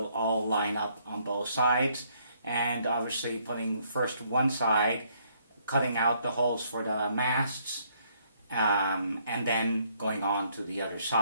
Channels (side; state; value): both; inverted; correlation -0.68